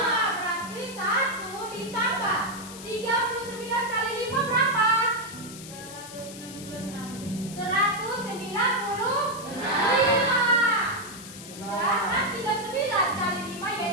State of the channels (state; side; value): noise; left; hiss, 14 dB below the sound